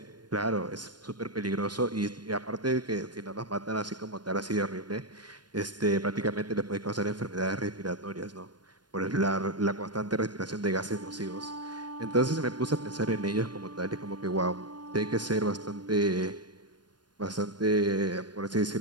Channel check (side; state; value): left; late; 0.70 ms